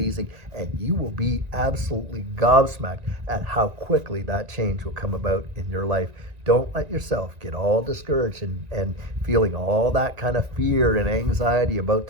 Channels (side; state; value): left; late; 1.9 ms